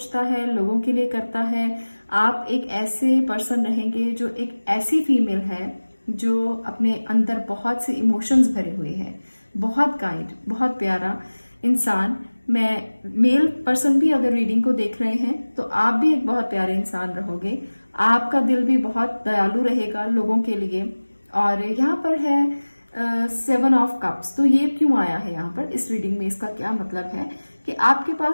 है, लोगों के लिए करता है। आप एक ऐसे पर्सन रहेंगे जो एक ऐसी फीमेल है जो अपने अंदर बहुत से इमोशंस भरे हुए हैं। बहुत काइंड, बहुत प्यारा इंसान। मैं मेल पर्सन भी अगर रीडिंग को देख रहे हैं तो आप भी एक बहुत प्यारे इंसान रहोगे। आपका दिल भी बहुत दयालु रहेगा लोगों के लिए। और यहाँ पर है 7 ऑफ कप्स। तो ये क्यों आया है यहाँ पर इस रीडिंग में? इसका क्या मतलब है कि आपके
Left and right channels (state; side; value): inverted; both; correlation -1.00